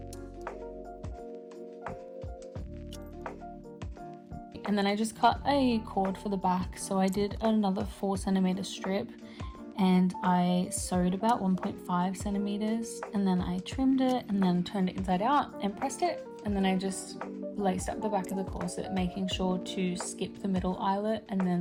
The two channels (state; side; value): identical; both; correlation 1.00